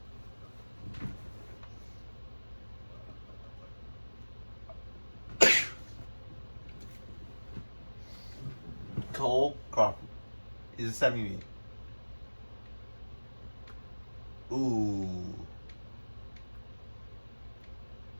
Cole Crawford is a 70. Ooh.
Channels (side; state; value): both; inverted; correlation -1.00